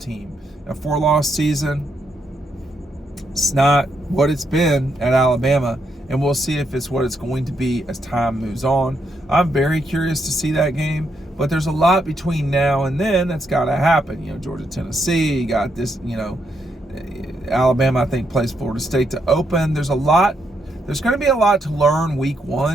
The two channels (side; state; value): both; normal; correlation 0.78